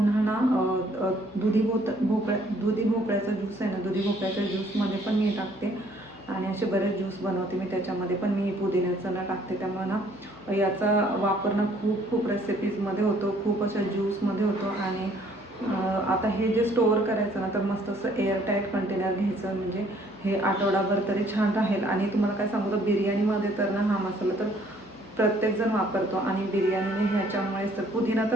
ना दुधी भोपळ्याचा ज्यूस आहे ना, दुधी भोपळ्याच्या ज्यूसमध्ये पण मी टाकते. आणि असे बरेच ज्यूस बनवते मी, त्याच्यामध्ये पण मी पुदिन्याचं ना टाकते. त्यामुळे ना याचा वापर ना खूप रेसिपीजमध्ये होतो, खूप अशा ज्यूसमध्ये होतो. आणि आता हे जे स्टोअर करायचं ना तर मस्त असं एअरटाईट कंटेनर घ्यायचं, म्हणजे हे आठवडाभर तरी छान राहील. आणि तुम्हाला काय सांगू तर बिर्याणीमध्ये तर ना हा मसाला तर प्रत्येकजण वापरतो. आणि बिर्याणीने ह्याच्यामुळेच तर पुदिना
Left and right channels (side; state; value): left; noise; hum, 26 dB below the sound